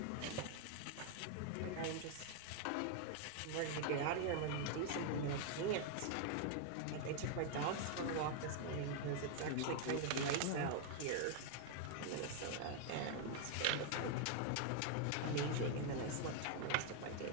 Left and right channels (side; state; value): both; different; correlation 0.00